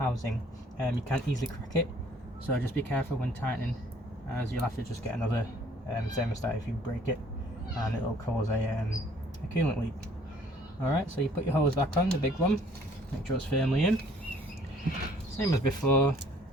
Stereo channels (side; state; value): both; normal; correlation 0.59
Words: You can't easily crack it, so just be careful when tightening, as you'll have to just get another thermostat if you break it, and it'll cause a coolant leak. Alright, so you put your hose back on, the big one, make sure it's firmly in, same as before.